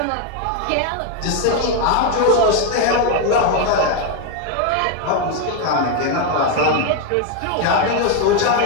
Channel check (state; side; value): different; both; correlation 0.01